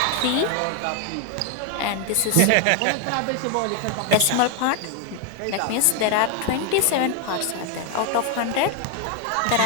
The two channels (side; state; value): both; different; correlation 0.01